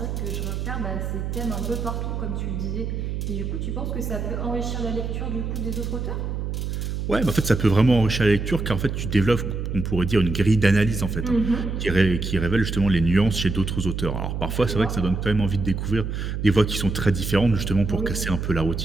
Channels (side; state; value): right; noise; hum, 3 dB below the sound